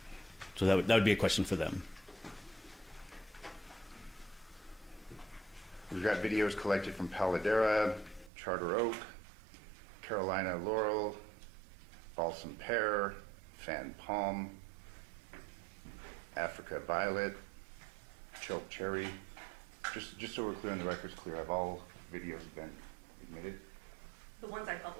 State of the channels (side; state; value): left; drops out; at 8.3 s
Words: So that would be a question for them. We've got videos collected from Paladera, Charter Oak, Carolina Laurel, Balsam Pear, Fan Palm, Africa Violet, Choke Cherry. Just so we're clear and the record's clear, have all videos been admitted? The ones I